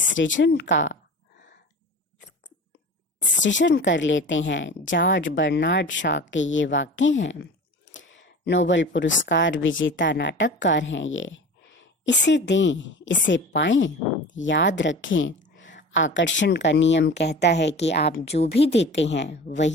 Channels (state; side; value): normal; both; correlation 0.37